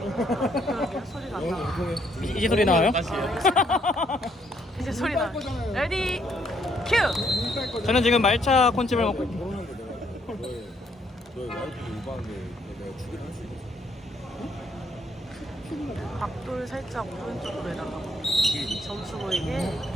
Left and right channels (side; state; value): both; normal; correlation 0.70